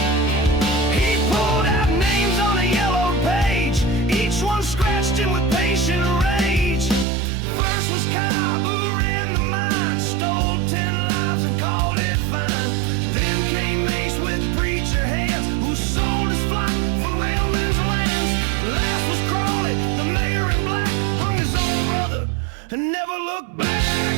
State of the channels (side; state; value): left; drops out; at 7.1 s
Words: He pulled out names on a yellow page, each one scratched in with patient rage. First was Cobb, who ran the mine, stole 10 lives and called it fine. Then came Mace with preacher hands, who sold his flock for railmen's lands. Last was Crawley, the mayor in black, hung his own brother and never looked back.